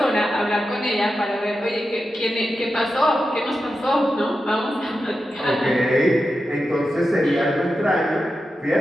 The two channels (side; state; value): both; normal; correlation 0.90